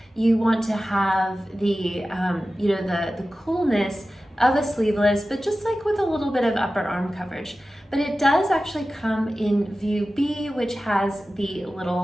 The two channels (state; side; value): normal; both; correlation 0.95